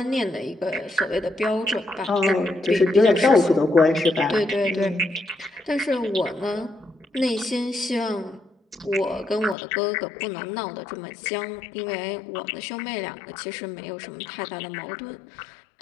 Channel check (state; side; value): drops out; right; at 9.6 s